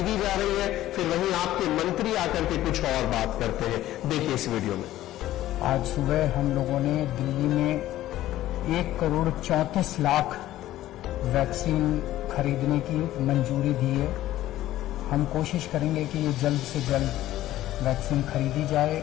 जा रही है, फिर वहीं आपके मंत्री आकर के कुछ और बात करते हैं। देखिए इस वीडियो में। आज सुबह हम लोगों ने दिल्ली में 1,34,00,000 वैक्सीन खरीदने की मंजूरी दी है। हम कोशिश करेंगे कि ये जल्द से जल्द वैक्सीन खरीदी जाए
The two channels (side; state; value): right; quieter; 14.4 dB